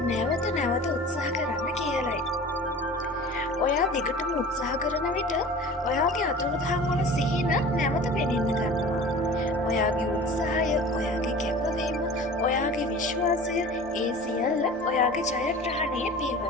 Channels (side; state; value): both; normal; correlation 0.40